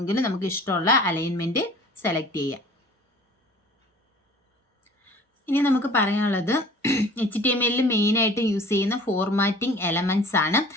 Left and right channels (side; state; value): both; normal; correlation 0.47